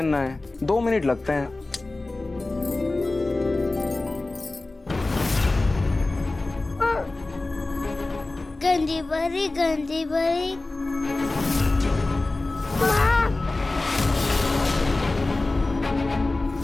है, 2 मिनट लगते हैं। गंदी भरी गंदी भरी।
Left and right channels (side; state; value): right; quieter; 3.1 dB